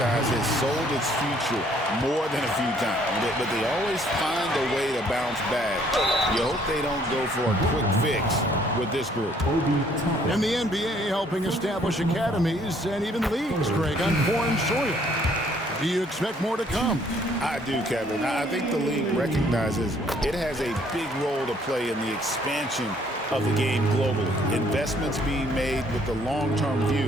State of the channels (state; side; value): normal; both; correlation 0.63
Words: has sold its future more than a few times, but they always find a way to bounce back. You hope they don't go for a quick fix with this group. And the NBA helping establish academies and even leagues, Greg, on foreign soil. Do you expect more to come? I do, Kevin. I think the league recognizes it has a big role to play in the expansion of the game globally. Investments being made with the long-term